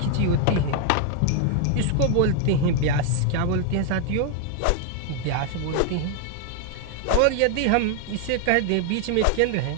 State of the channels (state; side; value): different; both; correlation 0.00